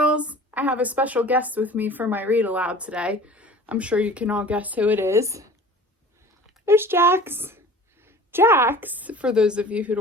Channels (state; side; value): normal; both; correlation 0.43